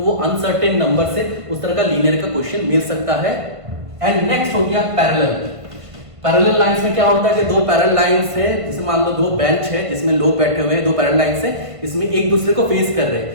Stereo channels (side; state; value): left; late; 1.5 ms